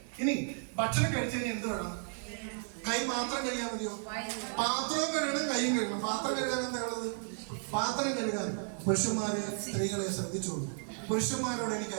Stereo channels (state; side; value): silent; left; 55 dB below the other